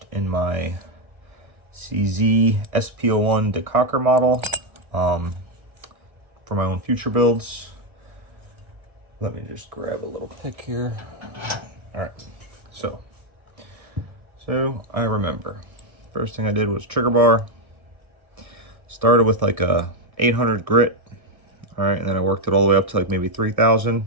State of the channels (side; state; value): left; late; 1.6 ms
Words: in my CZ SP-01 Decocker model for my own future builds. Let me just grab a little pick here. All right, so I remember first thing I did was trigger bar. Started with like a 800 grit. All right, and then I worked it all the way up to like maybe 3,000.